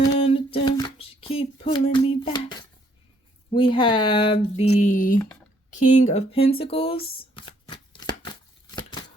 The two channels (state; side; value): normal; both; correlation 0.67